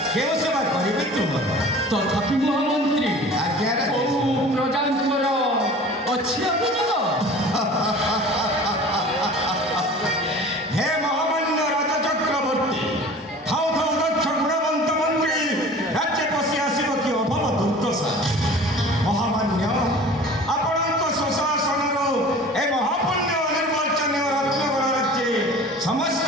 କେଉଁ ସେବା କରିବେ ତୁମର? ତଥାପି ମହାମନ୍ତ୍ରୀ ଆଜ୍ଞା କୋଉ ପ୍ରଜାଙ୍କର ଅଛି ଅଭିଯୋଗ? ହେ ମହାମାନ୍ୟ ରାଜ ଚକ୍ରବର୍ତ୍ତୀ, ଥାଉ ଥାଉ ଦକ୍ଷ ଗୁଣବନ୍ତ ମନ୍ତ୍ରୀ ରାଜ୍ୟ ପଶି ଆସିବ କି ଅଭବ ଦୁର୍ଦ୍ଦଶା। ମହାମାନ୍ୟ, ଆପଣଙ୍କ ସୁଶାସନରୁ ଏ ମହାପୁଣ୍ୟ ନିର୍ବାଚନୀୟ ରତ୍ନଗଡ଼ ରାଜ୍ୟ ସମସ୍ତ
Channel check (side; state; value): both; normal; correlation 0.42